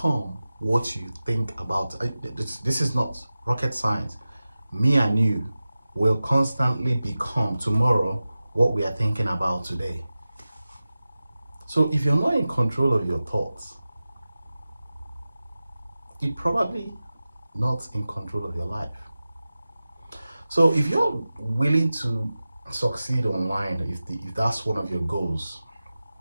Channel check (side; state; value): both; inverted; correlation -0.95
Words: what you think about. This is not rocket science. Me and you will constantly become tomorrow what we are thinking about today. So if you're not in control of your thoughts, you're probably not in control of your life. So if you're willing to succeed online, if that's one of your goals,